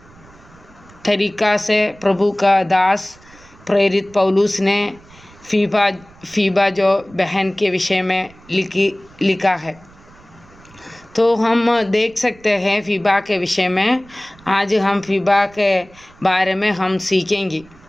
तरीका से प्रभु का दास प्रेरित पौलुस ने फीबा जो बहन के विषय में लिखा है। तो हम देख सकते हैं फीबा के विषय में। आज हम फीबा के बारे में हम सीखेंगे।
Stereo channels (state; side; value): noise; right; rumble, 25 dB below the sound